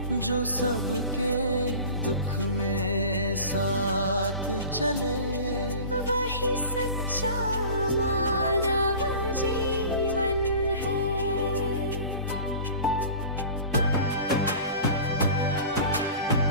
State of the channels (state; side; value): inverted; both; correlation -0.40